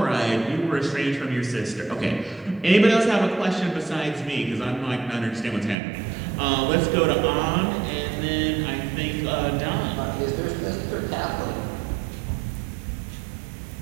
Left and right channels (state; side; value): drops out; left; at 5.8 s